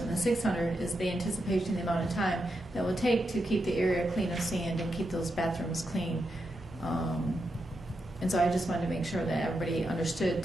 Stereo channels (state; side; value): normal; both; correlation 0.85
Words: and the $600 is the anticipation, the amount of time that will take to keep the area clean of sand and keep those bathrooms clean. And so I just wanted to make sure that everybody understood